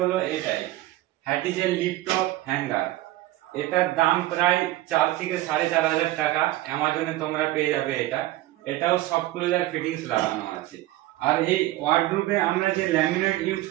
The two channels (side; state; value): left; quieter; 16.5 dB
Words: এটাই, হ্যাটিজের লিফট টপ হ্যাঙ্গার। এটার দাম প্রায় 4 থেকে 4,500 টাকা। অ্যামাজনে তোমরা পেয়ে যাবে এটা। এটাও সফট ক্লোজার ফিটিংস লাগানো আছে। আর এই ওয়ার্ডরোবে আমরা যে ল্যামিনেট ইউজ